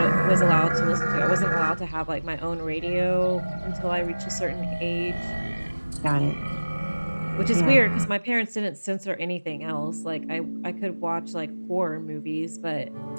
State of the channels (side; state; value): both; inverted; correlation -1.00